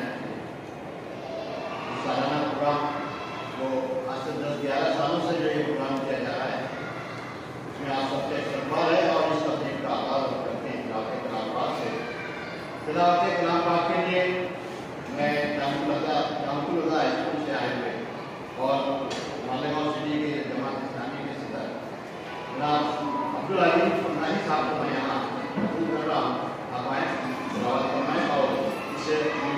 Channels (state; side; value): identical; both; correlation 1.00